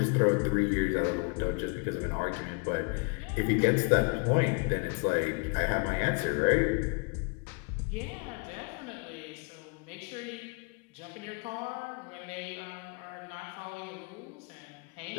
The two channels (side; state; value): right; quieter; 33.0 dB